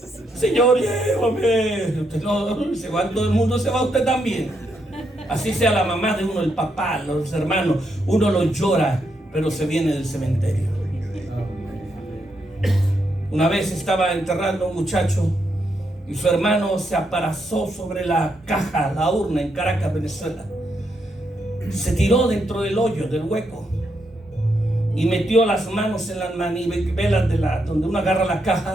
Señor, llévame. Usted no, se va, todo el mundo se va, usted también. Así sea la mamá de uno, el papá, los hermanos, uno lo llora, pero se viene del cementerio. Una vez estaba enterrando a un muchacho y su hermano se aparazó sobre la caja, la urna en Caracas, Venezuela. Se tiró dentro del hoyo, del hueco, y metió las manos en las manivelas donde uno agarra la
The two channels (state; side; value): normal; both; correlation 0.80